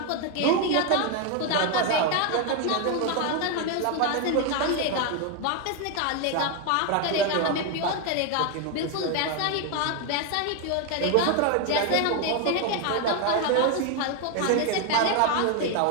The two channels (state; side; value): different; both; correlation 0.01